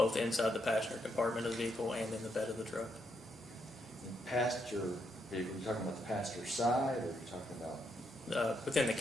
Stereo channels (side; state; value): both; normal; correlation 0.78